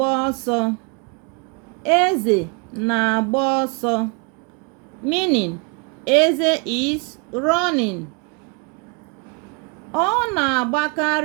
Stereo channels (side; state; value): left; quieter; 32.4 dB